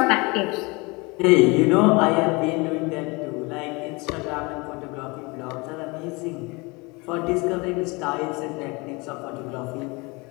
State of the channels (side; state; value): right; quieter; 26.6 dB